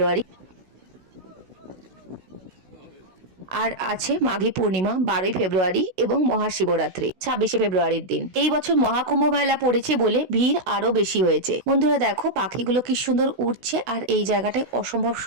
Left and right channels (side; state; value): left; late; 16 ms